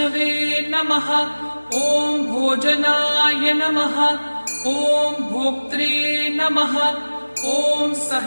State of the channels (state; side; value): inverted; both; correlation -1.00